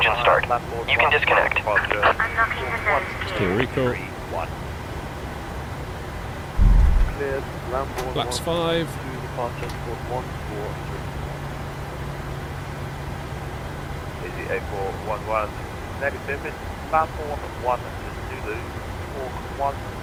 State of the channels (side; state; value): both; identical; correlation 1.00